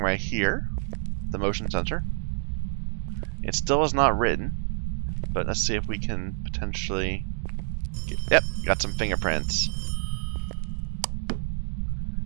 here, the motion sensor. It still is not written, but let's see if we can potentially... Yep, got some fingerprints.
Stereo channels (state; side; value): silent; left; digital silence